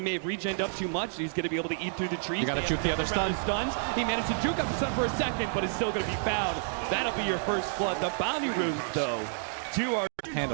may have regened up too much. He's going to be able to eat through the trees. You got to juke the other stun. Stuns. He managed to juke up the stun for a second, but it's still going to be found. That'll be your first blood. The bounty runes, though,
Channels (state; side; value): silent; left; digital silence